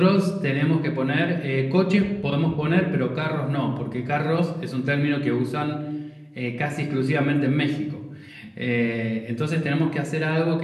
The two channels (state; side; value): identical; both; correlation 1.00